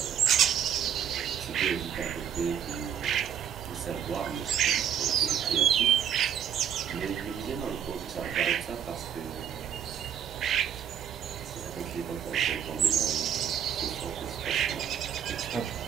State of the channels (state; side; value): quieter; left; 9.0 dB